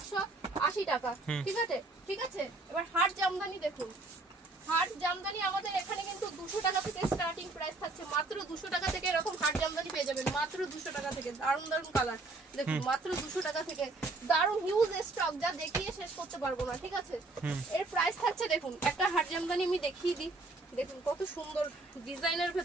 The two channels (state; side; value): quieter; left; 3.2 dB